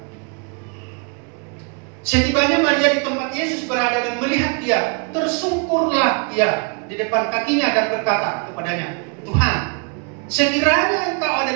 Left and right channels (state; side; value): quieter; left; 35.4 dB